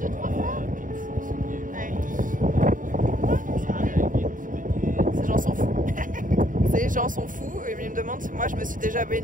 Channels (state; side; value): late; left; 0.39 ms